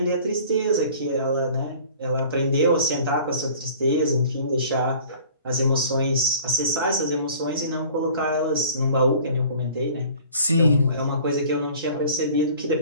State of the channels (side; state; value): both; inverted; correlation -0.48